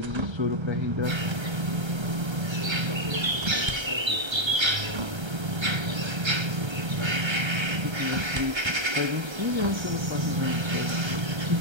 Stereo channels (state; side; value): late; left; 1.3 ms